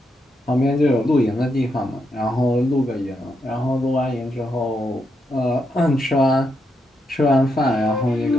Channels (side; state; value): both; normal; correlation 0.81